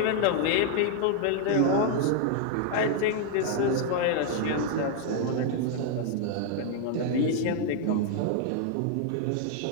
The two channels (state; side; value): different; both; correlation 0.00